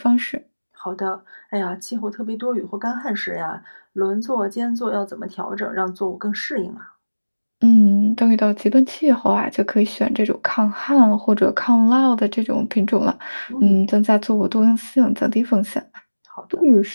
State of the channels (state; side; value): inverted; both; correlation -1.00